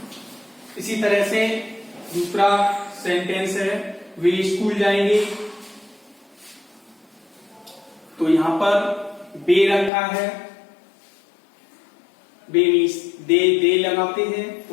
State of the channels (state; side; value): drops out; right; at 9.9 s